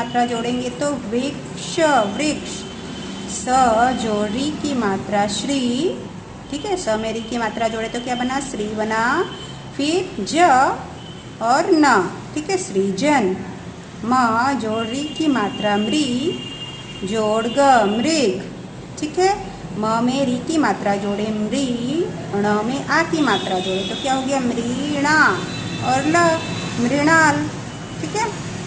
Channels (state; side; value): identical; both; correlation 1.00